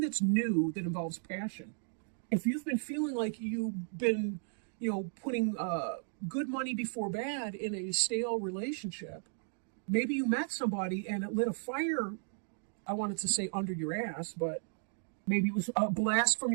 new that involves passion. If you've been feeling like you've been, putting good money before bad in a stale relationship, maybe you met somebody and it lit a fire, I wanted to say under your ass, but maybe it was a blast from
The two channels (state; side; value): silent; left; digital silence